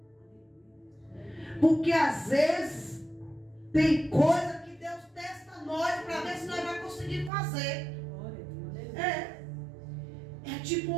Porque às vezes tem coisa que Deus testa nós para ver se nós vamos conseguir fazer. É tipo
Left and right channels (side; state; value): left; drops out; at 7.3 s